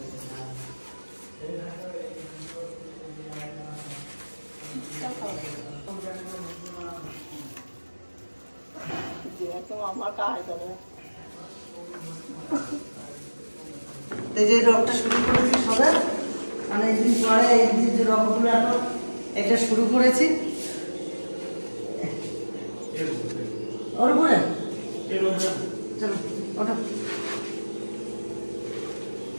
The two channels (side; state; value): both; inverted; correlation -1.00